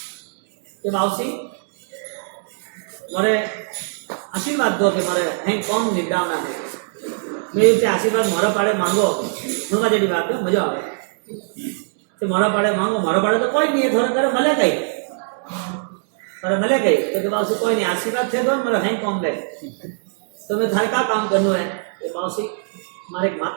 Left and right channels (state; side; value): silent; left; 64 dB below the other